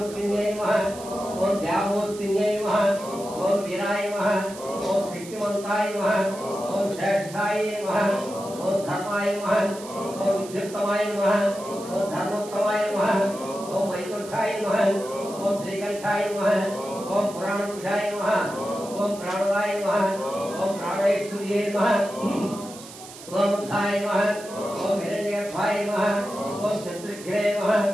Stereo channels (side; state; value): right; noise; hiss, 16 dB below the sound